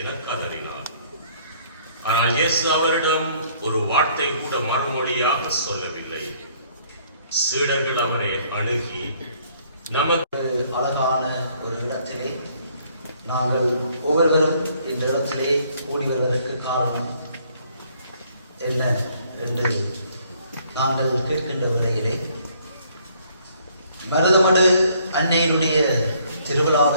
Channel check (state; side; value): inverted; both; correlation -0.63